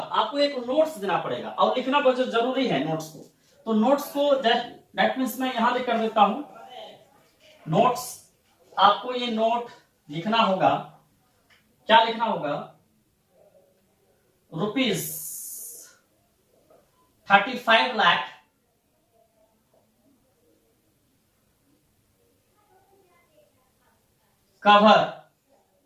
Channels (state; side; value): identical; both; correlation 1.00